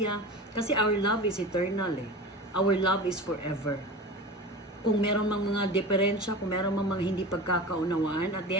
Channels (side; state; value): both; normal; correlation 0.32